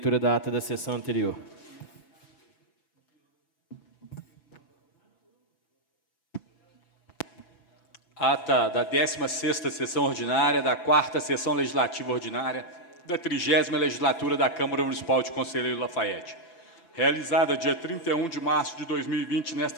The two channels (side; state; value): right; late; 5.9 ms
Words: da ata da sessão anterior. Ata da 16ª sessão ordinária da 4ª sessão legislativa ordinária da 30ª legislatura da Câmara Municipal de Conselheiro Lafaiete. Realizada dia 31 de março de 2020